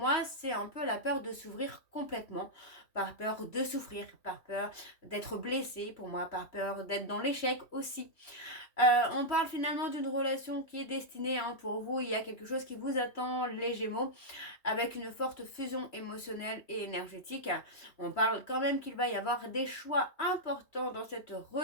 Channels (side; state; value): right; late; 3.0 ms